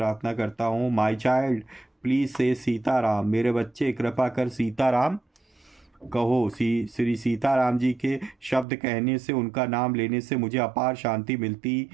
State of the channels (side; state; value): left; drops out; at 8.7 s